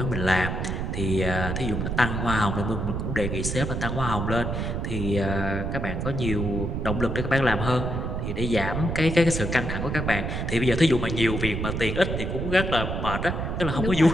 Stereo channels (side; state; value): right; noise; rumble, 2 dB below the sound